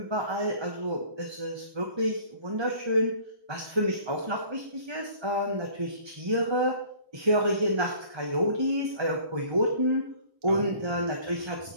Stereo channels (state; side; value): late; left; 1.1 ms